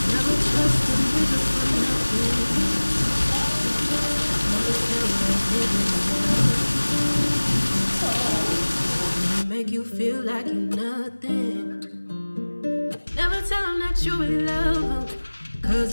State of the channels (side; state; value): both; inverted; correlation -1.00